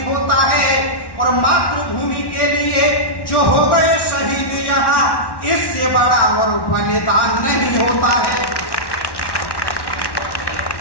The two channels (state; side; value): late; right; 1.1 ms